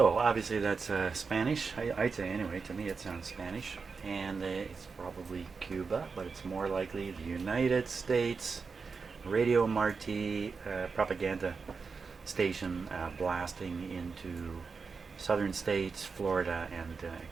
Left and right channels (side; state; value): left; quieter; 5.0 dB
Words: obviously that's Spanish. I'd say anyway. To me, it sounds Spanish, and it's probably Cuba, but it's more likely the United States Radio Marti propaganda station blasting into southern states, Florida, and